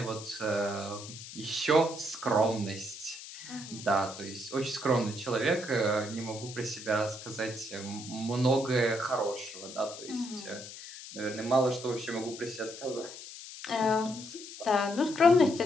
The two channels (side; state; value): left; noise; hiss, 13 dB below the sound